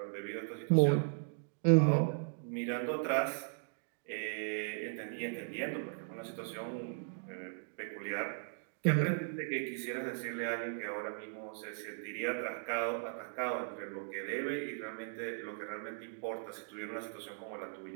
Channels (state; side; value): silent; left; digital silence